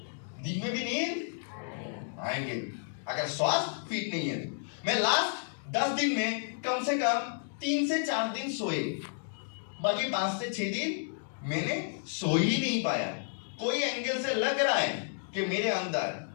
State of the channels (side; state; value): right; silent; digital silence